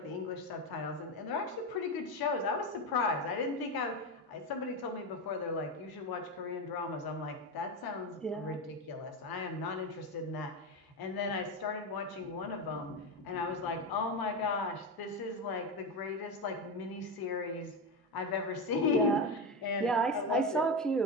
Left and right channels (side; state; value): both; normal; correlation 0.16